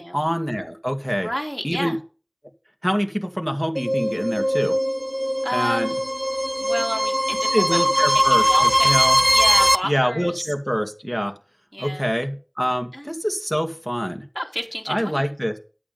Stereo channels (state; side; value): identical; both; correlation 1.00